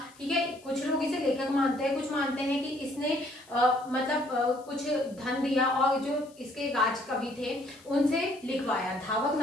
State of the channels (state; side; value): noise; left; hiss, 26 dB below the sound